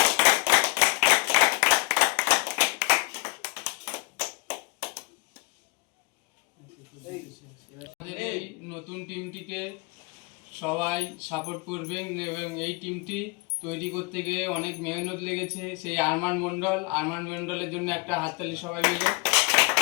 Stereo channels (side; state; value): right; quieter; 28.5 dB